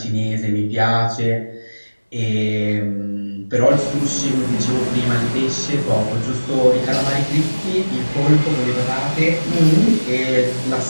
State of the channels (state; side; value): inverted; both; correlation -1.00